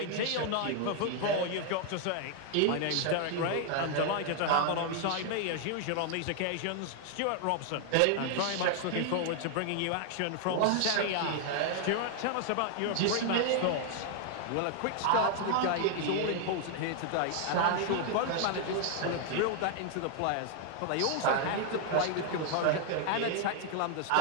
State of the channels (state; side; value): different; both; correlation 0.00